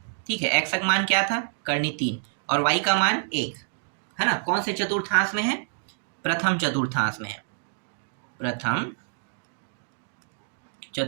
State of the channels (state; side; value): silent; left; digital silence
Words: ठीक है, एक्स का मान क्या था, कर्णी 3, और वाई का मान 1 है ना, कौन से चतुर्थांश में है, प्रथम चतुर्थांश में है, प्रथम